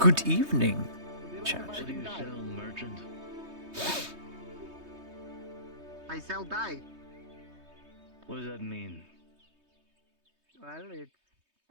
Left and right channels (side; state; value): left; late; 3.2 ms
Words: evening, chat. What do you sell, merchant? I sell dye. What does that mean? Well, it's